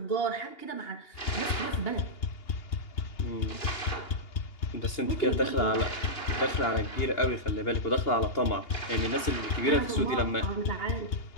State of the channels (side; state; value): right; late; 2.8 ms